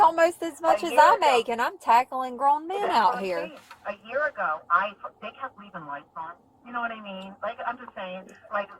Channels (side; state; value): both; identical; correlation 1.00